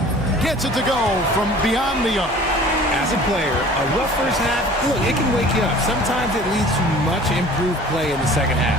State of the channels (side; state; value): both; normal; correlation 0.47